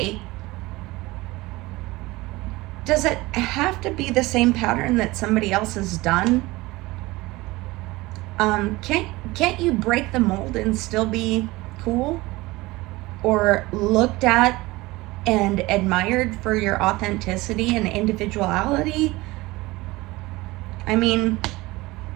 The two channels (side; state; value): left; quieter; 20.7 dB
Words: does it have to be the same pattern that somebody else has done? Can't you break the mold and still be cool or looked at and admired for your authenticity and individuality? I mean,